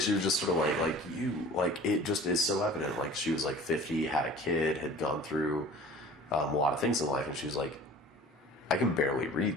was just sort of it just is so evident. Like, she was, 50, had a kid, had gone through a lot of things in life, and she was like, I can barely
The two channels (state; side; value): normal; both; correlation 0.44